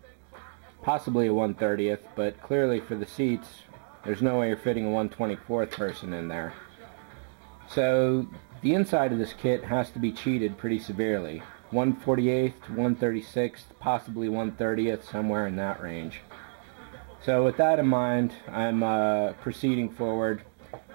possibly a 1/30th, but clearly for the seats, there's no way you're fitting a 1/24th person in there. So the inside of this kit has to be cheated pretty severely. 1/48th to 1/36th, possibly 1/30th, somewhere in that range. So with that in mind, I'm proceeding forward.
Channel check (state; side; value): silent; left; digital silence